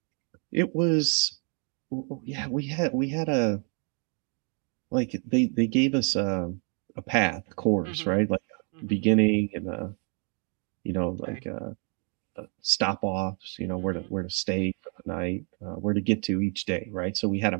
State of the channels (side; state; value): left; quieter; 37.5 dB